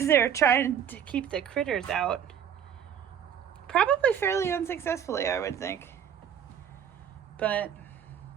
they were trying to keep the critters out. Probably fairly unsuccessfully, I would think. But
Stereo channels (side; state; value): left; quieter; 8.7 dB